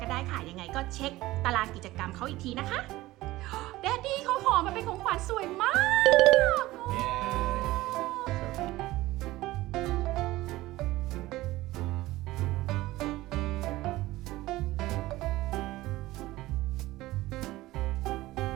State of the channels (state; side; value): quieter; left; 17.7 dB